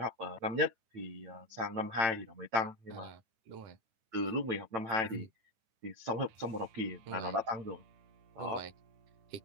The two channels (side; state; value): left; late; 9.0 ms